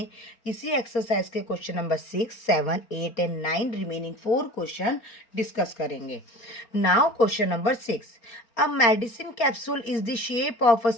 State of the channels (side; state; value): right; late; 4.4 ms